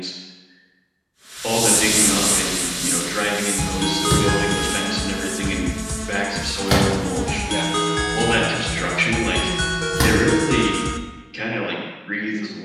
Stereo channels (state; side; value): identical; both; correlation 1.00